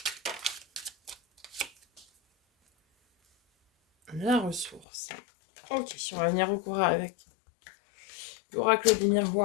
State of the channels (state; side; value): drops out; right; at 4.9 s